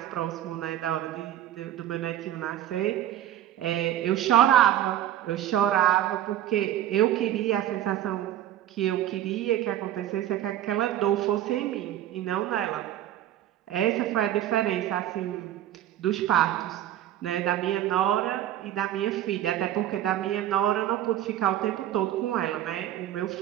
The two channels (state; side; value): quieter; left; 12.3 dB